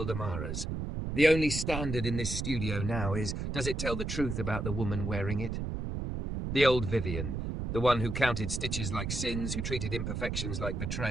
Amara's. "The only standard in this studio now is, does it tell the truth about the woman wearing it?" The old Vivian, the one who counted stitches like sins, who treated imperfections like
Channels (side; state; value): right; noise; rumble, 3 dB below the sound